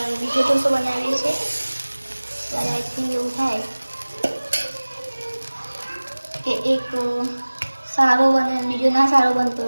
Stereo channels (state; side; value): inverted; both; correlation -1.00